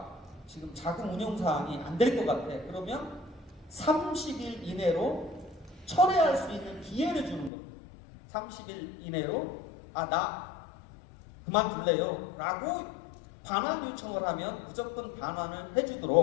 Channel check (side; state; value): right; drops out; at 7.5 s